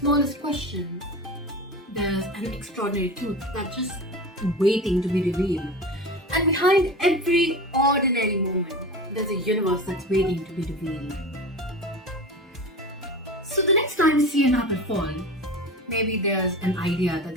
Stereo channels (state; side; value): normal; both; correlation 0.30